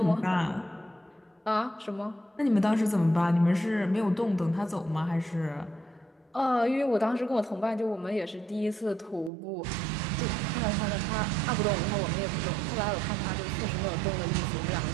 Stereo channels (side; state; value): left; drops out; at 9.3 s